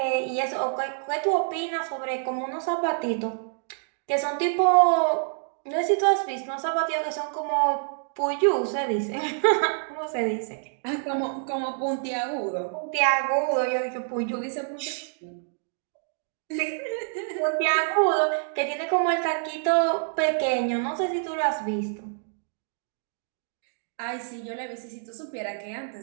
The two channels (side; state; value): left; silent; digital silence